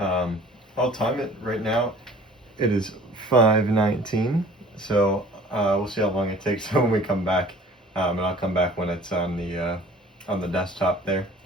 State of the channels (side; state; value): both; normal; correlation 0.48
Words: time it right now. It is 5:19. So we'll see how long it takes when we come back. And I'll come back when it's on the desktop there.